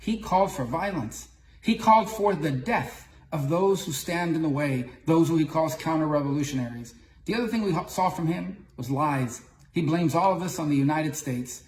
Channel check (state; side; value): identical; both; correlation 1.00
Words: called for violence. He called for the death of those who stand in the way, those who he calls counter-revolutionaries. The other thing we saw from him was lies. He blames all of this on the United States.